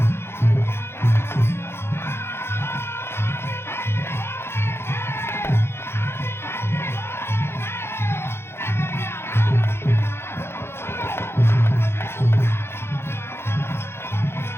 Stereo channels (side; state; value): right; late; 0.12 ms